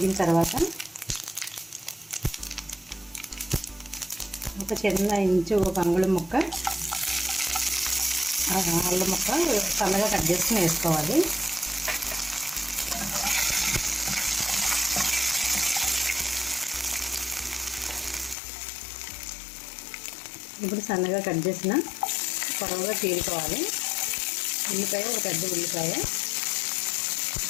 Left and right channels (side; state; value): right; drops out; at 18.4 s